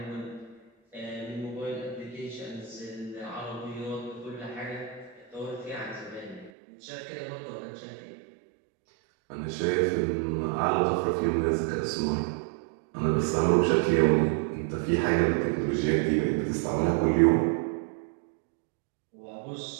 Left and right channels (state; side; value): drops out; left; at 6.5 s